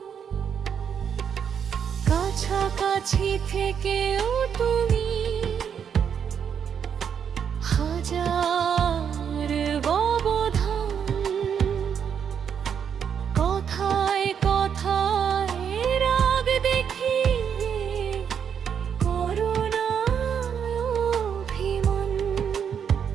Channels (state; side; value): quieter; left; 7.7 dB